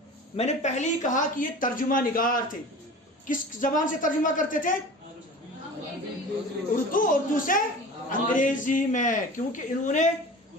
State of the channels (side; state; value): both; normal; correlation 0.38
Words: میں نے پہلے ہی کہا کہ یہ ترجمہ نگار تھے۔ کس زبان سے ترجمہ کرتے تھے؟ اردو سے انگریزی میں، کیونکہ انہوں نے